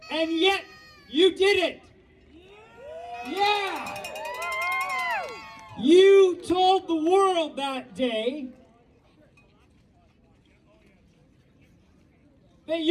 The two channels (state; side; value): identical; both; correlation 1.00